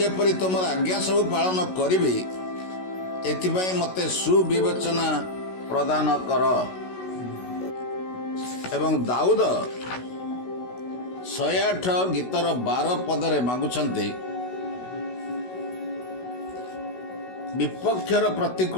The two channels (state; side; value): late; right; 16 ms